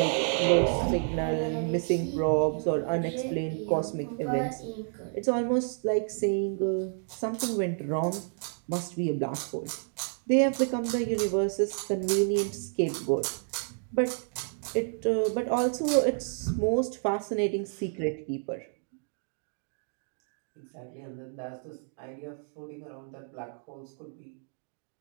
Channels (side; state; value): left; silent; 58 dB below the other